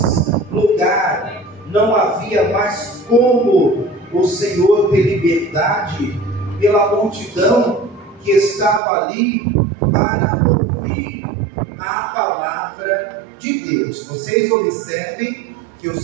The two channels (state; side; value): drops out; left; at 8.8 s